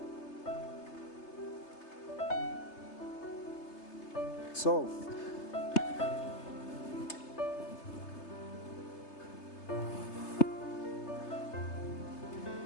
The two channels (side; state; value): right; late; 3.3 ms